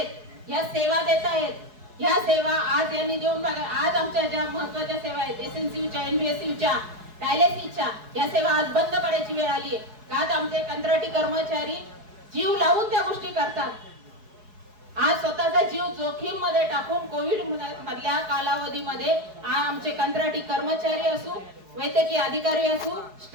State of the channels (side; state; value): left; late; 4.7 ms